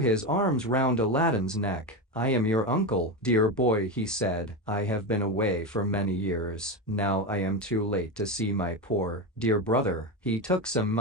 arms round Aladdin's neck. "I am your uncle, dear boy," he said. "I have been away for many years. Now I am too late to see my poor, dear brother." He took some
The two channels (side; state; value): both; normal; correlation 0.16